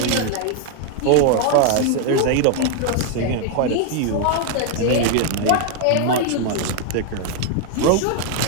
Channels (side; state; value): both; different; correlation 0.00